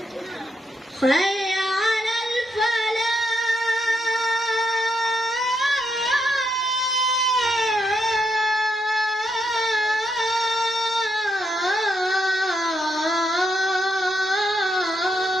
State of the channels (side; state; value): both; normal; correlation 0.80